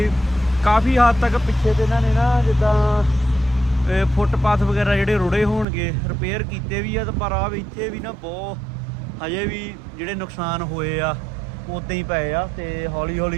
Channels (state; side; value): drops out; left; at 5.7 s